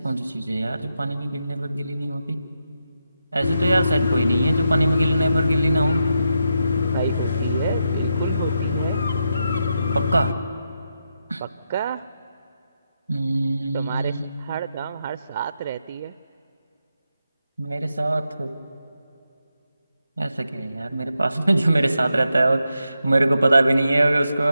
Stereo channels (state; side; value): inverted; both; correlation -0.85